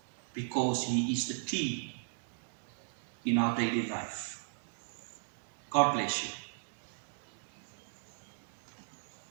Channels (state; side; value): silent; left; digital silence